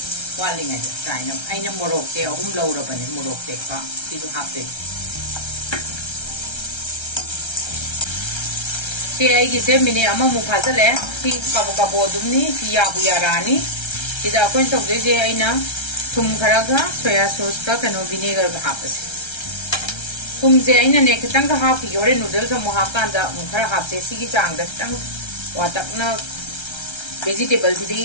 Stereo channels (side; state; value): right; late; 1.3 ms